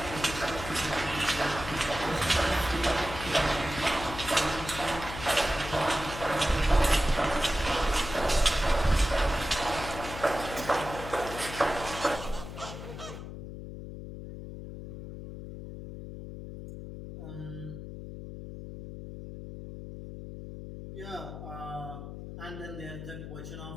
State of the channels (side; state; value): left; noise; hum, 10 dB below the sound